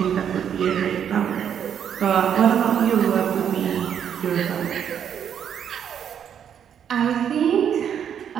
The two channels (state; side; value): quieter; left; 8.6 dB